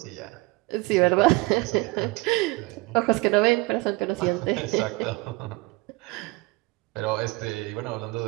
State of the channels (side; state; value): left; quieter; 23.3 dB